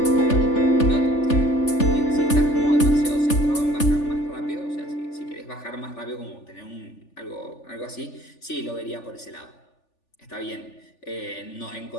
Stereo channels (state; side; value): late; right; 3.4 ms